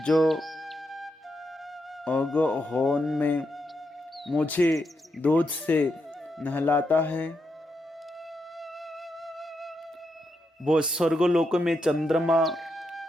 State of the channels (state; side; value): normal; both; correlation 0.83